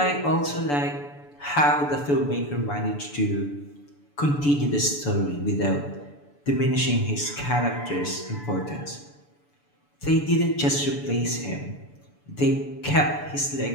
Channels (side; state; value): right; late; 6.9 ms